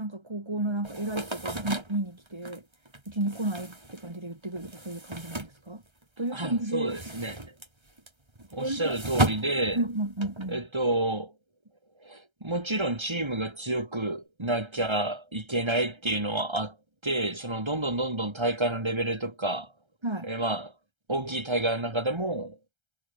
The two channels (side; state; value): left; late; 1.3 ms